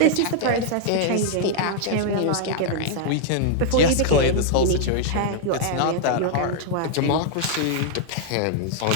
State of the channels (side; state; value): both; different; correlation -0.01